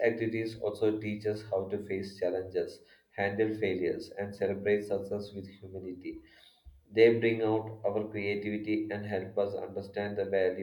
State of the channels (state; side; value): identical; both; correlation 1.00